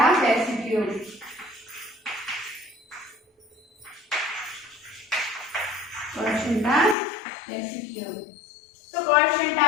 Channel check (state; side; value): drops out; right; at 7.0 s